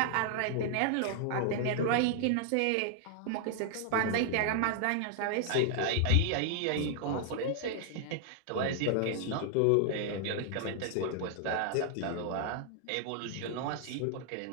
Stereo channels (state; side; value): different; both; correlation 0.00